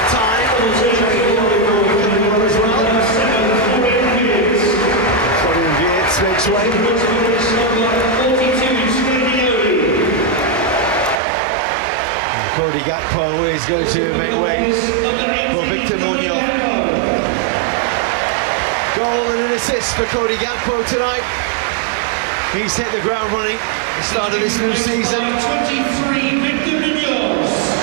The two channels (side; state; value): left; drops out; at 11.2 s